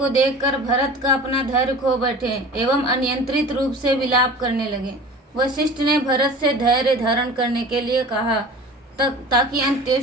देखकर भरत का अपना धैर्य खो बैठे एवं अनियंत्रित रूप से विलाप करने लगे। वशिष्ठ ने भरत से धैर्य धारण करने के लिए कहा ताकि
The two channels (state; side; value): normal; both; correlation 0.39